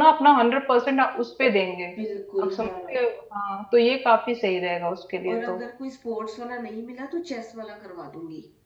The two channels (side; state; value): both; identical; correlation 1.00